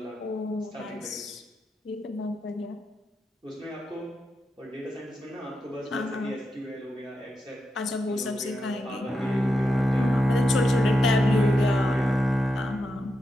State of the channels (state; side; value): normal; both; correlation 0.87